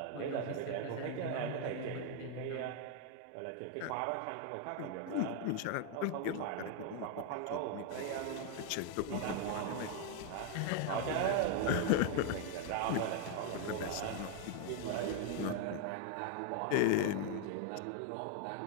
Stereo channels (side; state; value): both; different; correlation 0.00